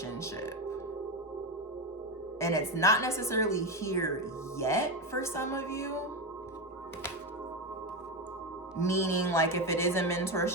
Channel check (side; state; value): both; normal; correlation 0.14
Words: And it's not necessarily here yet for some of you. Meaning, like, if it is a